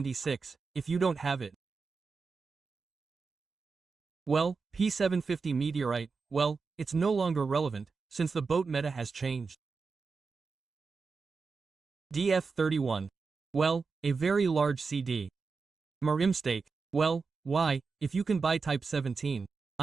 if you don't have it. Well, P750 Meteorite, well, it's no longer relevant, since the boat meta has changed. DF-31. Well, a very large CD. Marimstake. Well, why, if you can buy Type 17.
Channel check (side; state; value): left; quieter; 4.7 dB